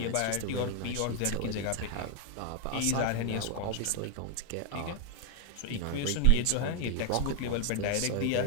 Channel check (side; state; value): both; different; correlation 0.01